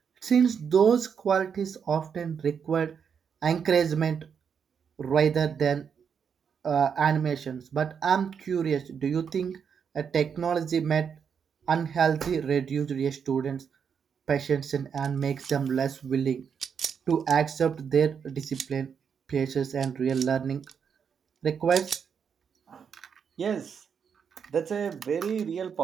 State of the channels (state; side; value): quieter; left; 6.9 dB